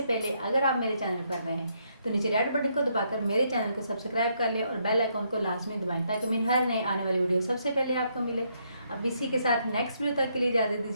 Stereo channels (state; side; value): inverted; both; correlation -0.74